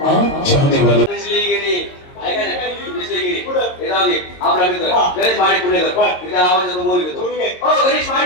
आपला मित्र गणेश माडी पुणेकर तिथे आवाज बोल घेतो. गणेश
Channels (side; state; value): right; late; 22 ms